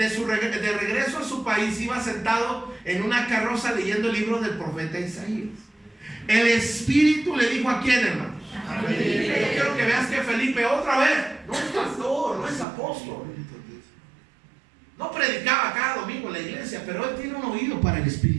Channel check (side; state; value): left; drops out; at 12.7 s